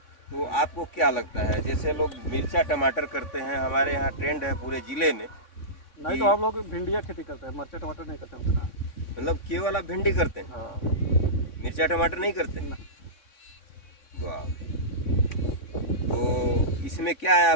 तो आपको क्या लगता है? जैसे लोग मिर्चा टमाटर करते हैं, हमारे यहाँ ट्रेंड है पूरे ज़िले में। नहीं तो हम लोग भिंडिया खेती करते हैं, मिर्चा टमाटर नहीं करते उतना। मतलब केवल आप भिंडी करते हैं, हाँ, मिर्चा टमाटर नहीं करते? ना। वाह। तो इसमें क्या है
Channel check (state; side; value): late; right; 3.6 ms